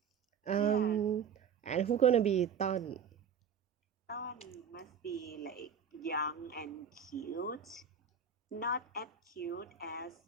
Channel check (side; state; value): left; quieter; 6.8 dB